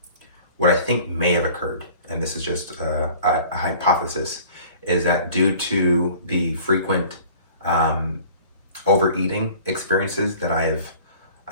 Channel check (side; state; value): both; inverted; correlation -0.48